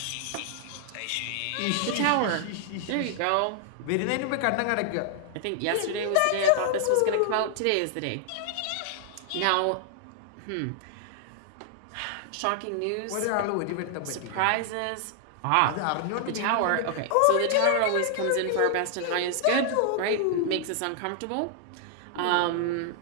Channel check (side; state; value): both; different; correlation 0.00